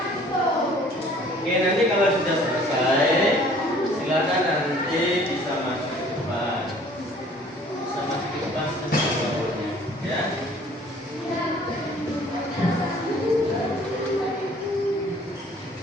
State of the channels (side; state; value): both; normal; correlation 0.53